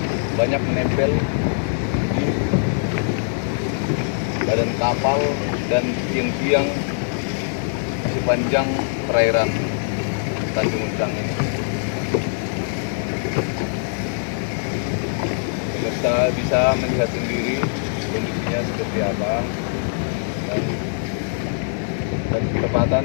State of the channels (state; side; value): silent; right; digital silence